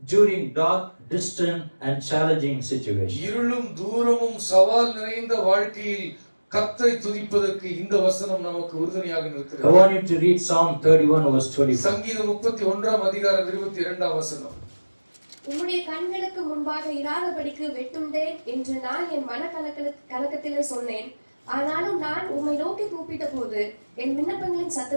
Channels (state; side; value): inverted; both; correlation -1.00